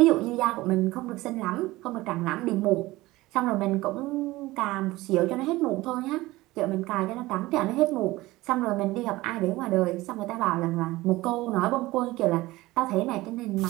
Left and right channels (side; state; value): left; quieter; 19.0 dB